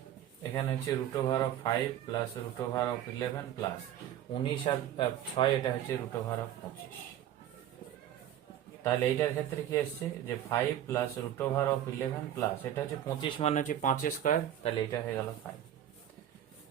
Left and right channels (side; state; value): left; quieter; 11.1 dB